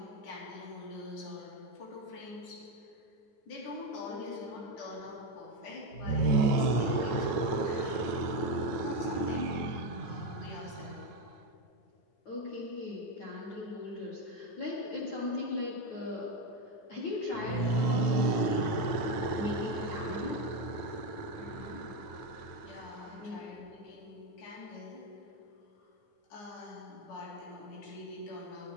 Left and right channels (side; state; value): right; late; 9.2 ms